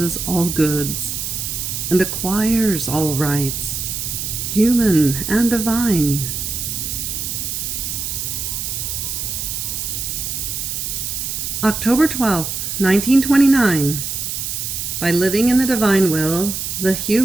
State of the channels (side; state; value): right; noise; hiss, 4 dB below the sound